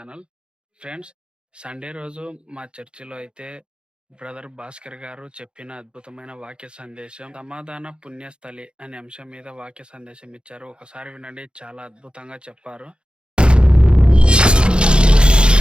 ఫ్రెండ్స్, సండే రోజు మా చర్చిలో అయితే బ్రదర్ భాస్కర్ గారు చెప్పిన అద్భుతమైన వాక్య సందేశం సమాధాన పుణ్యస్థలి అనే అంశం మీద వాక్య సందేశం ఇచ్చారు. ఒకసారి వినండి, చాలా అద్భుతంగా చెప్పారు.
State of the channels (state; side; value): late; left; 0.053 ms